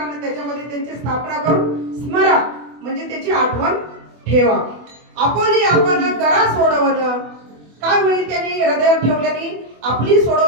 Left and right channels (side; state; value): left; late; 24 ms